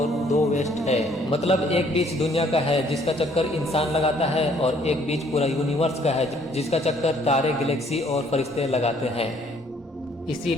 2 वेस्ट है, मतलब एक बीच दुनिया का है जिसका चक्कर इंसान लगाता है, और एक बीच पूरा यूनिवर्स का है जिसका चक्कर तारे, गैलेक्सी और फरिश्ते लगाते हैं।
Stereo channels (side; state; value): both; normal; correlation 0.62